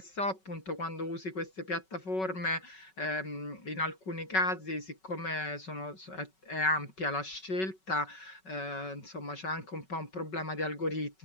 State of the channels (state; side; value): late; right; 5.3 ms